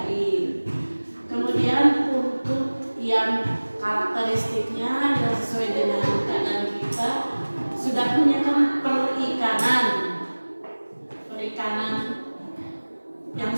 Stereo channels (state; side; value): inverted; both; correlation -1.00